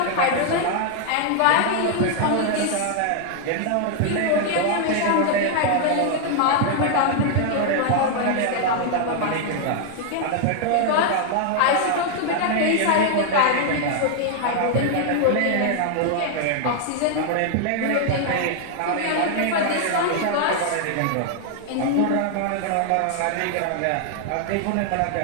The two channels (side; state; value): both; different; correlation 0.00